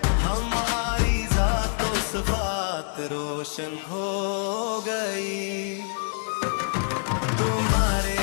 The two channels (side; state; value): right; silent; 55 dB below the other